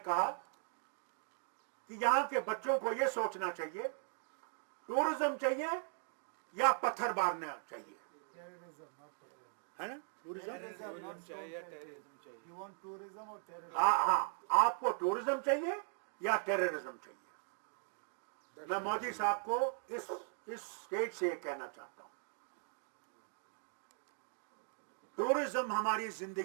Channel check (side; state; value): left; silent; 52 dB below the other